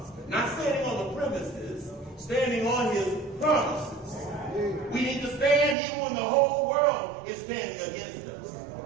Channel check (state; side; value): drops out; left; at 5.8 s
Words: Not standing on the premises, standing on his promises. We need to stand even when the whole world is standing against